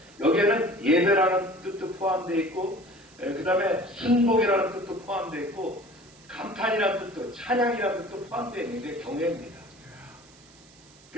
여기에는 예배라는 뜻도 포함되어 있고 그 다음에 순복이라는 뜻도 포함되어 있고 감탄이라는 뜻도 찬양이라는 뜻도 포함되어 있는 게 경외입니다.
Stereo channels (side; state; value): right; noise; hiss, 26 dB below the sound